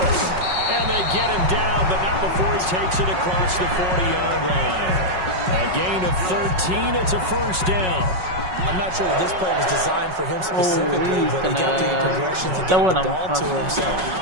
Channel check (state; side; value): late; left; 5.4 ms